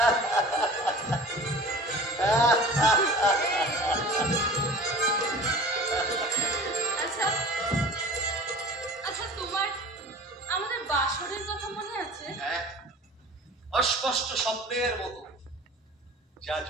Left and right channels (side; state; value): both; normal; correlation 0.41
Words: আচ্ছা আচ্ছা, তোমার আমাদের বাসরের কথা মনে আছে? হ্যাঁ, অস্পষ্ট স্বপ্নের মতো, যা